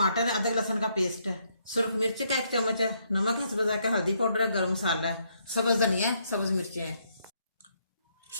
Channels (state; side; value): inverted; both; correlation -0.74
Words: है, अदरक लहसुन का पेस्ट है, सुरख मिर्च का 1 चम्मच है, नमक है स्वाद का, हल्दी पाउडर है, गरम मसाला है, सब्ज धनिया है, सब्ज मिर्चें हैं।